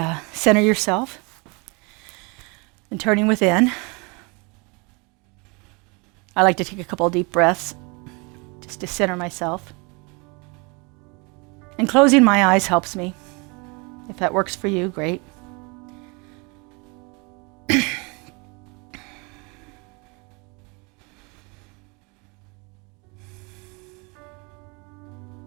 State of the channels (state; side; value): quieter; left; 30.0 dB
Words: center yourself and turning within. I like to take a couple of deep breaths just to center myself. And closing my eyes helps me. If that works for you, great.